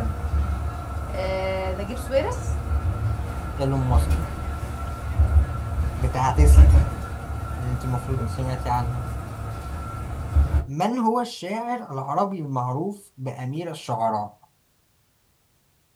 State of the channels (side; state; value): both; identical; correlation 1.00